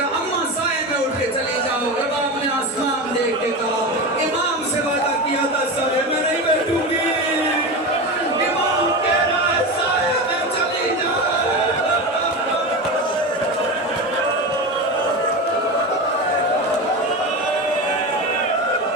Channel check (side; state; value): both; normal; correlation 0.23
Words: अम्मा साए में उठ के चली जाओ। रबाब ने आसमान देख के कहा इमाम से वादा किया था साए में नहीं बैठूंगी। इमाम कह रहा है साए में चली जाओ।